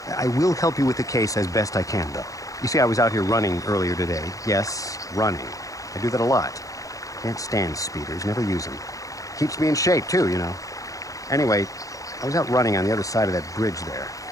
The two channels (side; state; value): right; late; 0.16 ms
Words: I will help you with the case as best I can, though. You see, I was out here running earlier today. Yes, running. I do that a lot. Can't stand speeders, never use them. Keeps me in shape, too, you know. Anyway, I was out running on the other side of that bridge there,